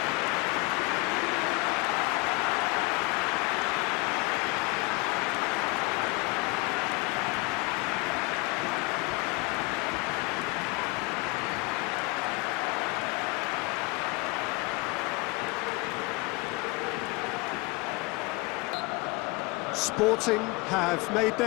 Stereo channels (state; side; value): quieter; right; 24.6 dB